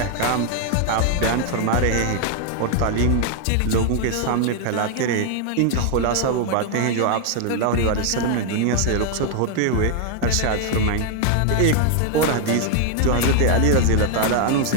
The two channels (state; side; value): different; both; correlation 0.00